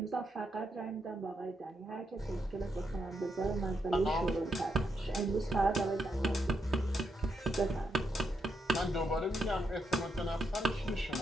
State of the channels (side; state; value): both; normal; correlation 0.81